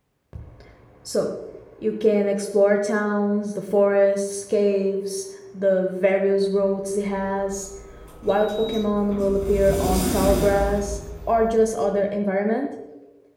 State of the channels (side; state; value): both; identical; correlation 1.00